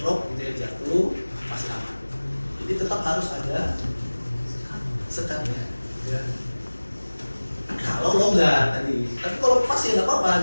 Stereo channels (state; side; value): inverted; both; correlation -1.00